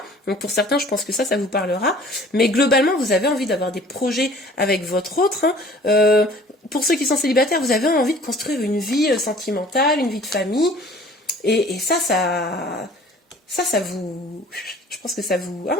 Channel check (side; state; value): both; normal; correlation 0.51